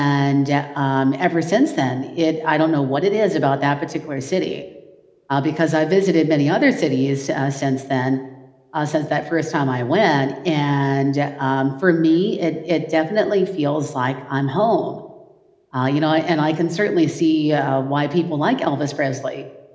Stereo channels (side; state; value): both; identical; correlation 1.00